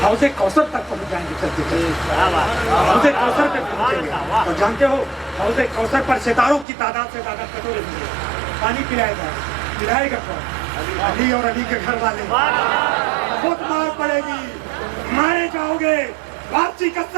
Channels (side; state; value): left; drops out; at 6.7 s